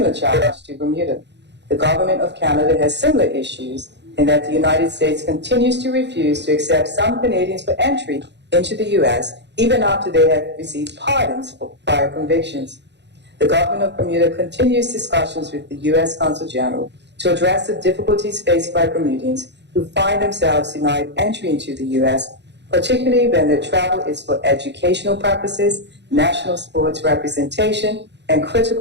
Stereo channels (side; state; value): left; late; 0.51 ms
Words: challenge to Bermuda. The government of Canada has similar issues in that the United States continues to refuse to accept some Canadians for entry into the U.S. even after they have received pardons for prior convictions. The government of Bermuda continues discussions with the U.S. Consul General to address the difficulties faced by Bermudians who find themselves denied entry into the U.S., particularly when their travel is for educational purposes, national sports representation, and